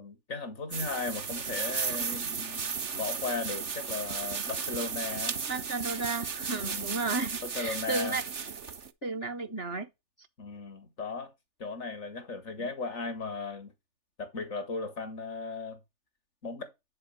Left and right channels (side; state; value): right; late; 3.4 ms